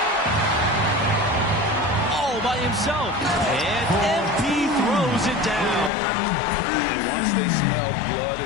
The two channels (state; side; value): drops out; right; at 5.9 s